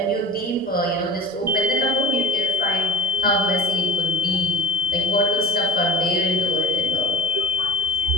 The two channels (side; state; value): both; normal; correlation 0.35